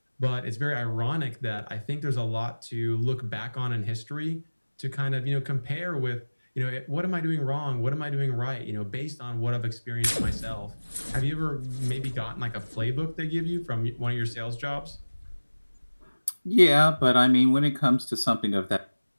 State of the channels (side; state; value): both; inverted; correlation -1.00